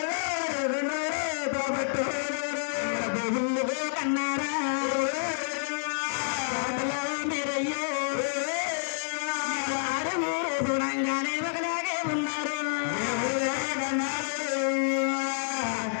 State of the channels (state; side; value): silent; right; digital silence